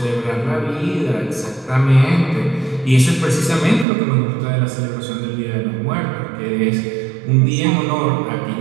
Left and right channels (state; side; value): drops out; left; at 3.9 s